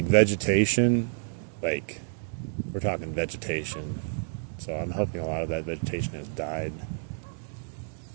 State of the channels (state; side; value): silent; left; digital silence